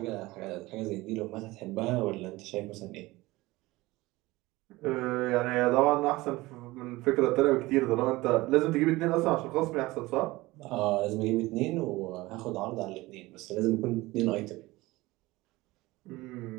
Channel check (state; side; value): quieter; left; 20.0 dB